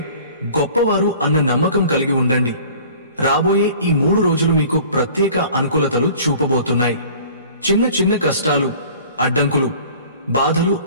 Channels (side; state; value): both; inverted; correlation -0.47